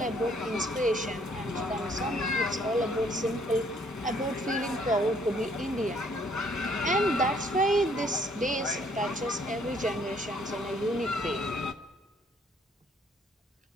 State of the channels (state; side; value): normal; both; correlation 0.64